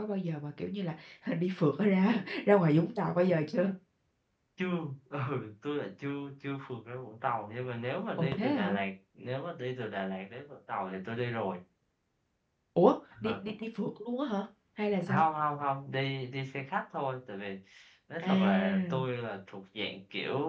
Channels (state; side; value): identical; both; correlation 1.00